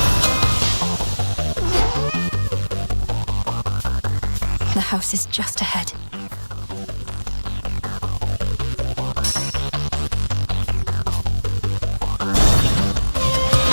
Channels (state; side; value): inverted; both; correlation -1.00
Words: The house is just ahead.